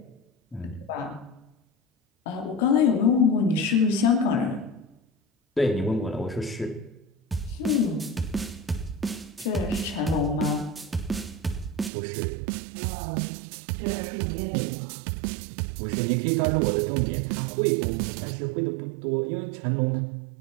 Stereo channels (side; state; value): left; drops out; at 11.9 s